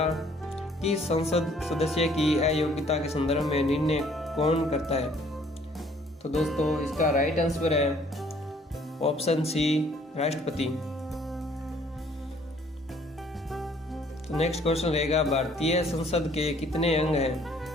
किस संसद सदस्य की अयोग्यता के संदर्भ में निर्णय कौन करता है? तो दोस्तों इसका राइट आंसर है ऑप्शन सी, राष्ट्रपति। तो नेक्स्ट क्वेश्चन रहेगा, भारतीय संसद के कितने अंग हैं?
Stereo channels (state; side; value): normal; both; correlation 0.60